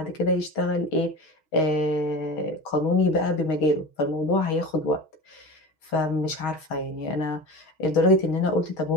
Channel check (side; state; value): right; late; 6.3 ms